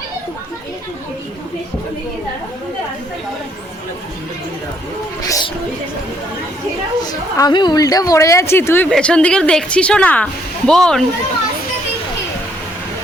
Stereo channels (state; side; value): normal; both; correlation 0.69